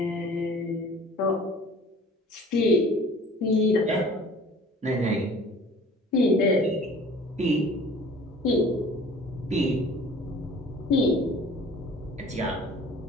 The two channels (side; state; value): both; normal; correlation 0.48